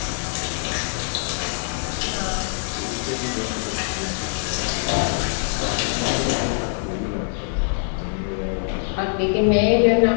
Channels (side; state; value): right; silent; digital silence